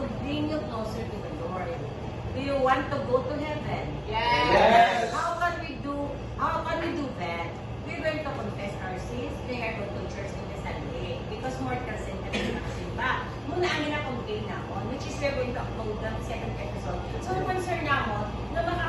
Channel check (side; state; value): both; identical; correlation 1.00